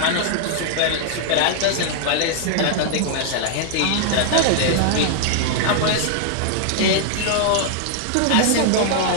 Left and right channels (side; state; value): both; different; correlation 0.00